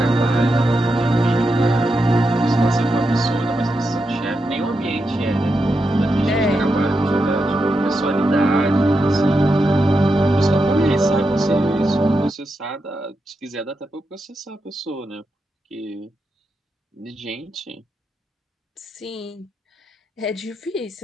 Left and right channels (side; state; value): both; normal; correlation 0.86